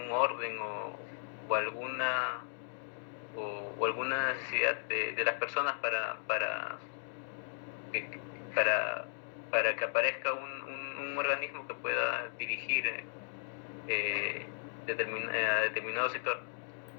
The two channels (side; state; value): right; silent; digital silence